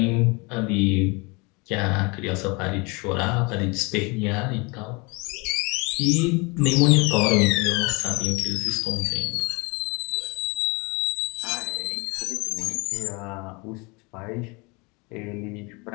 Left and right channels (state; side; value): quieter; right; 28.4 dB